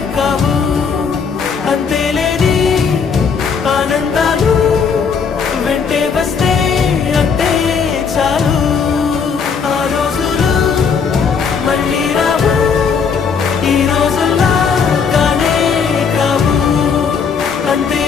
కావు. అంతేలేని ఆనందాలు వెంటే వస్తే అంటే చాలు. ఆ రోజులు మళ్ళీ రావు, ఈ రోజుల్లా కానే కావు.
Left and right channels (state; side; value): quieter; right; 6.0 dB